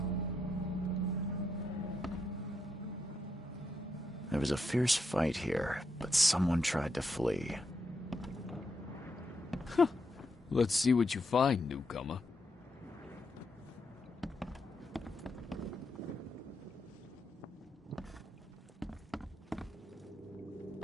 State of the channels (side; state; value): both; normal; correlation 0.82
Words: There was a fierce fight here, but someone tried to flee. Let's see what you find, newcomer.